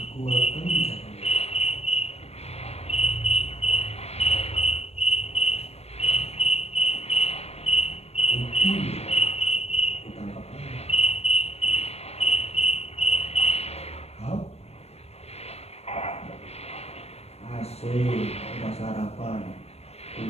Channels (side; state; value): right; late; 0.30 ms